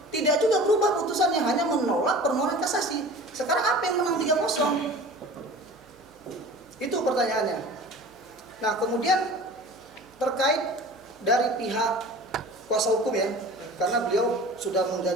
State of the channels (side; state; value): right; noise; hum, 30 dB below the sound